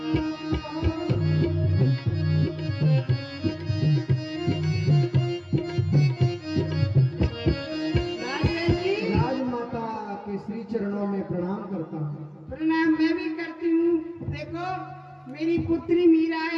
राजवैद्य जी राजमाता के श्री चरणों में प्रणाम करता हूँ। प्रणाम मैं भी करती हूँ। देखो मेरी पुत्री मीरा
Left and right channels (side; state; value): both; identical; correlation 1.00